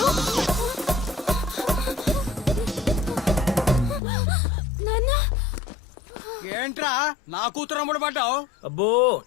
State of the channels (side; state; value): right; drops out; at 4.0 s